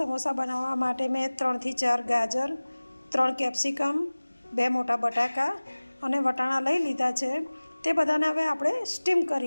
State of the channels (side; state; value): both; inverted; correlation -1.00